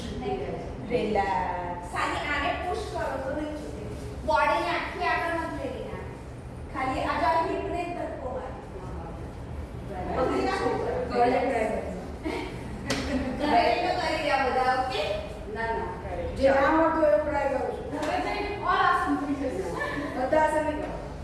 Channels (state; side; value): identical; both; correlation 1.00